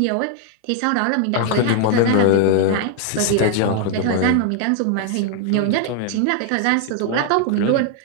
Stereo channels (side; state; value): both; different; correlation 0.00